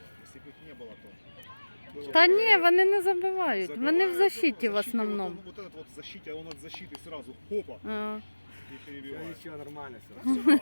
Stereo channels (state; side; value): inverted; both; correlation -1.00